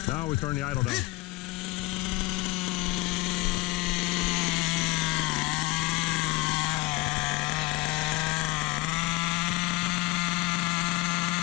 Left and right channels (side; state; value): right; quieter; 22.1 dB